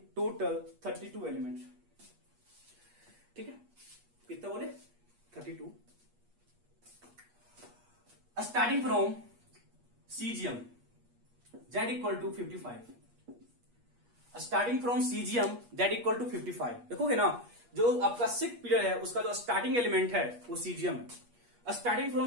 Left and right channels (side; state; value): left; late; 8.4 ms